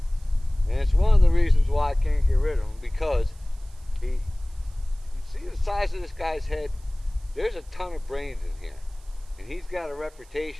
and it's one of the reasons why I can't get rid of him, because you see the size of this guy's head. There's a ton of brains in here, and he's got a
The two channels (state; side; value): noise; right; hiss, 28 dB below the sound